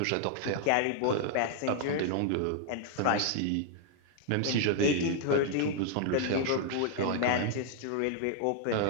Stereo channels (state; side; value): different; both; correlation 0.00